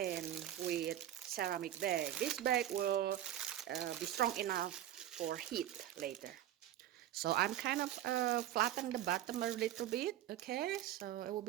with ceramic bag. This bag will be strong enough for heat later. So I'm kind of flatten the bottom a little bit, okay? So it will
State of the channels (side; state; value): left; quieter; 12.4 dB